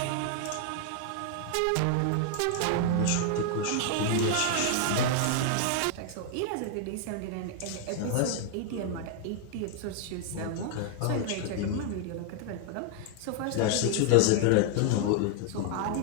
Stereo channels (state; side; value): different; both; correlation 0.00